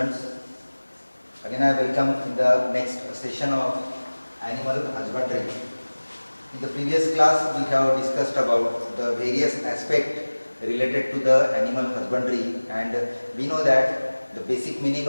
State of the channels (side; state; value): both; inverted; correlation -1.00